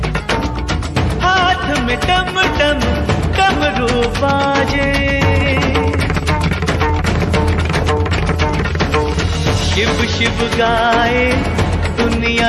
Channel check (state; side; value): identical; both; correlation 1.00